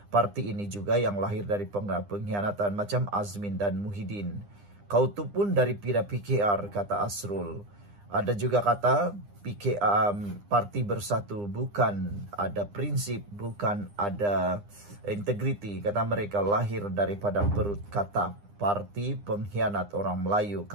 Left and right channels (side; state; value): left; late; 9.9 ms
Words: Parti ini juga yang lahir dari pengkhianatan macam Azmin dan Muhyiddin. Kau tu pun dari pira PKR, kata Asrul. Ada juga kata parti Bersatu bukan ada prinsip, bukan ada integriti. Kata mereka lahir daripada perut kata. Parti pengkhianat orang Melayu,